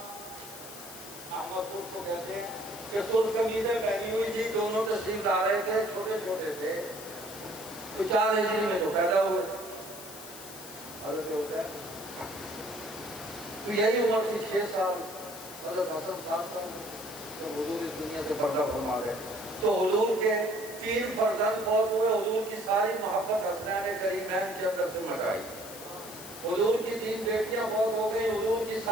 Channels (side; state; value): left; noise; hiss, 14 dB below the sound